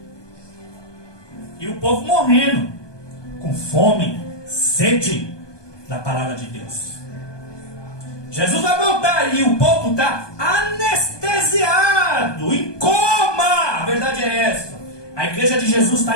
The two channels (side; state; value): right; late; 1.2 ms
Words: E o povo morrendo, com fome, sede da palavra de Deus. Jesus vai voltar e o povo está anestesiado, em coma. A verdade é essa. A igreja de Jesus